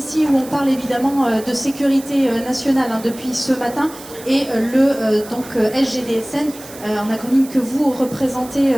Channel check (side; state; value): right; noise; hiss, 17 dB below the sound